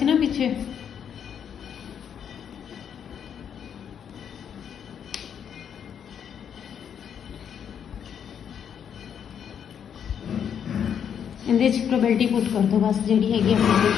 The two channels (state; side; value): quieter; right; 8.2 dB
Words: ना पिछे, इहदे च प्रोबेबिलिटी पुट कर दो बस जिहड़ी हैगी अपने